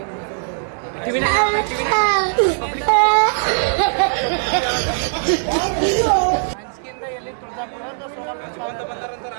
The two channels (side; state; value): left; silent; digital silence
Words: ಅಂಚಿಕೆಯಿಂದ ಎಲ್ಲಿ ತುಳಜಾಪುರ ಅಂತ ಸೋಲಾಪುರ ಬಂದಾರಂತ